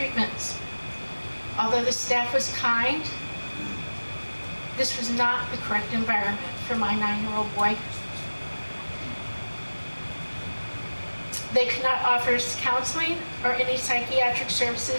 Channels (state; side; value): inverted; both; correlation -1.00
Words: Although the staff was kind, this was not the correct environment for my 9-year-old boy. They could not offer us counseling or any psychiatric